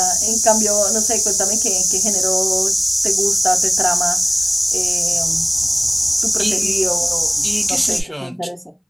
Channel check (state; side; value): identical; both; correlation 1.00